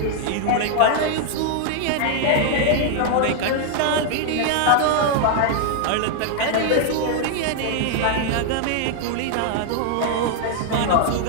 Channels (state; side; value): different; both; correlation 0.00